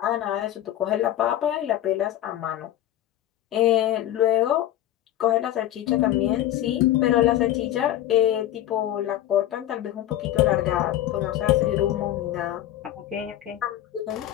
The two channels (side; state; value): right; quieter; 12.9 dB